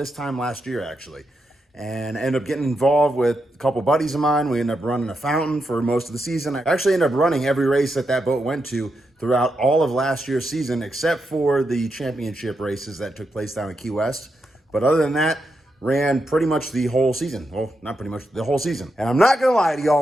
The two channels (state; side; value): normal; both; correlation 0.84